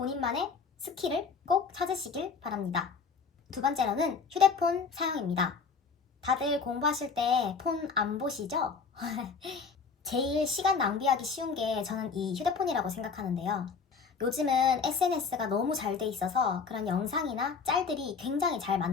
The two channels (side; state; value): right; quieter; 5.3 dB